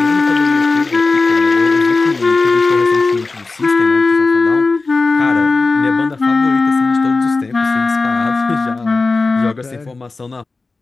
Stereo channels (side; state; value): right; quieter; 3.7 dB